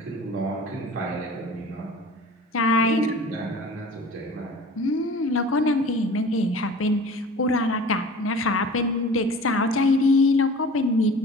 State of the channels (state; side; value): normal; both; correlation 0.42